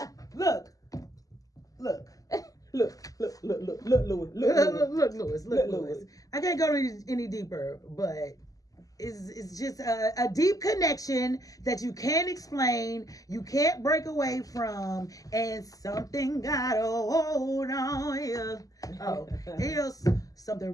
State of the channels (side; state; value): right; late; 0.17 ms